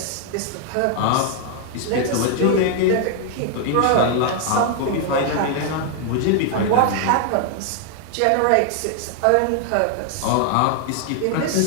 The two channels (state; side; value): different; both; correlation 0.00